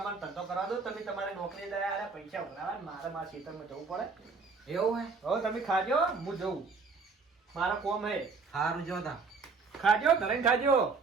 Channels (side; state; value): left; quieter; 4.6 dB